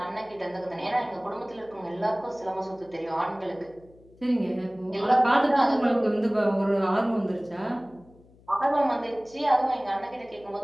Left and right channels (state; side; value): noise; left; hum, 27 dB below the sound